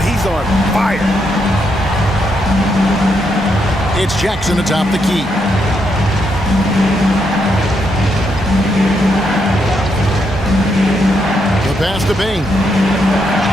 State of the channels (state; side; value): normal; both; correlation 0.78